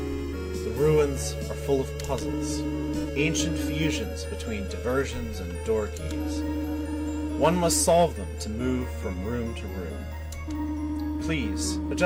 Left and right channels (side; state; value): both; identical; correlation 1.00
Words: ruins are full of puzzles, ancient fusions between diversions and door keys. One must solve them to move from room to room. Please,